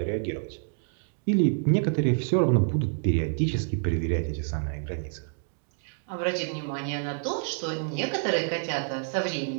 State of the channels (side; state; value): left; silent; 59 dB below the other